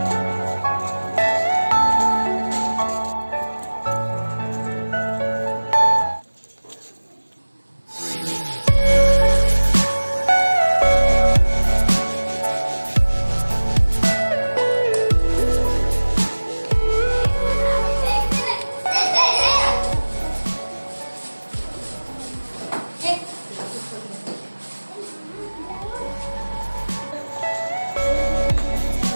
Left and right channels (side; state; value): both; inverted; correlation -1.00